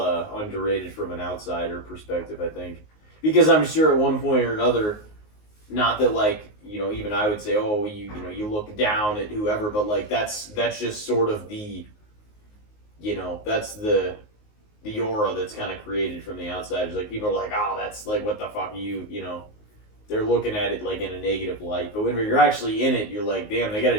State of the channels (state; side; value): late; right; 19 ms